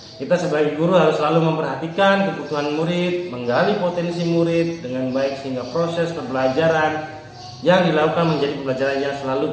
Kita sebagai guru harus selalu memperhatikan kebutuhan murid, menggali potensi murid dengan baik sehingga proses pembelajaran yang dilakukan menjadi pembelajaran yang selalu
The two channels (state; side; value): identical; both; correlation 1.00